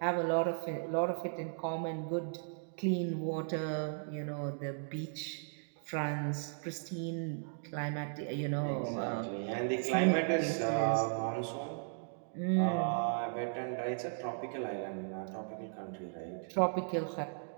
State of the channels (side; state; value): left; silent; digital silence